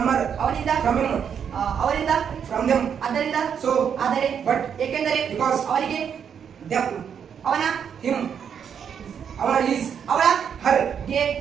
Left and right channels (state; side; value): quieter; left; 7.7 dB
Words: ಹರ್ ಅವನಿಂದ ಫ್ರಮ್ ಹಿಮ್ ಅವರಿಂದ ಫ್ರಮ್ ದೆಮ್ ಆದ್ದರಿಂದ ಸೊ ಆದರೆ ಬಟ್ ಏಕೆಂದರೆ ಬಿಕಾಸ್ ಅವರಿಗೆ ದೆಮ್ ಅವನ ಹಿಮ್ ಅವನ ಈಸ್ ಅವಳ ಹರ್ ಗೆ